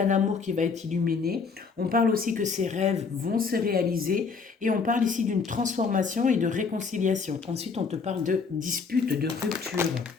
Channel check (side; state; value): right; quieter; 5.1 dB